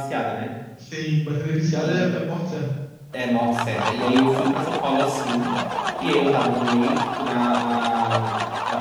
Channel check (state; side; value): identical; both; correlation 1.00